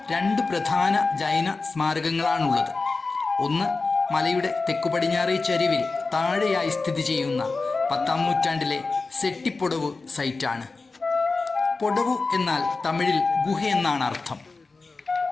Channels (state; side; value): quieter; right; 3.9 dB